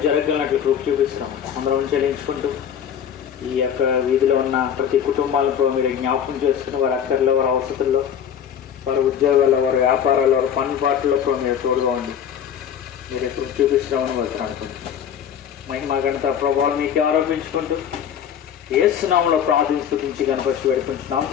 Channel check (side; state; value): right; quieter; 8.7 dB